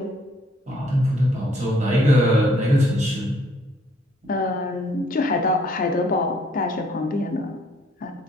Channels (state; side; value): normal; both; correlation 0.64